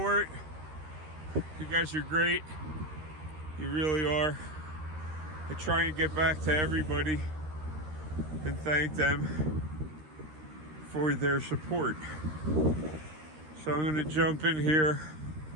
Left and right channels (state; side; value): late; left; 13 ms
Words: You guys are great. You really are. I try and get back to everybody and thank them for their support. So I'm going to jump in here